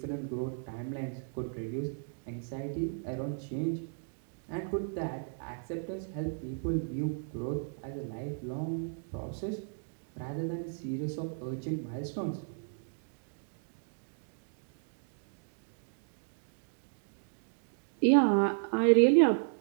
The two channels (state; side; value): silent; left; digital silence